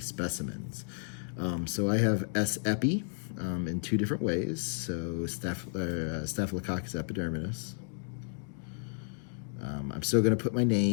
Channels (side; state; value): right; silent; digital silence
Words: So I have S. epi in two different ways. So Staphylococcus epidermidis. I'm still going to put my